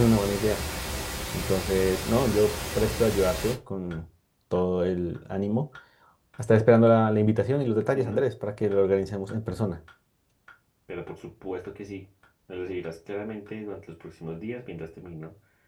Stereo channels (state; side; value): identical; both; correlation 1.00